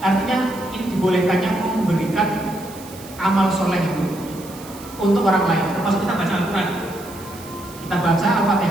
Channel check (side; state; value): right; noise; hiss, 18 dB below the sound